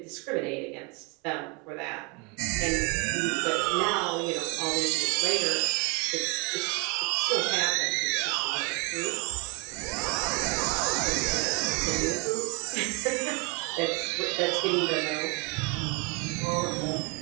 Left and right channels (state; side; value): quieter; left; 28.4 dB